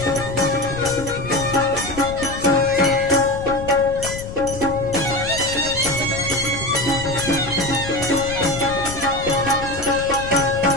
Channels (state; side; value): noise; left; rumble, 11 dB below the sound